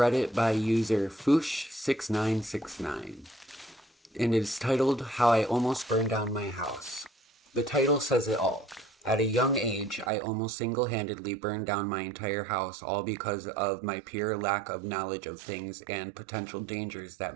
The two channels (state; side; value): drops out; left; at 10.1 s